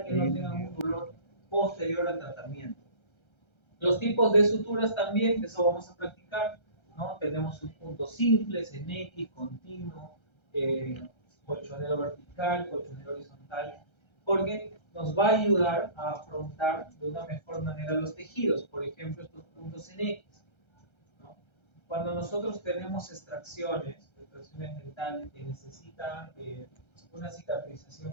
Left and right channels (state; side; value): late; right; 1.3 ms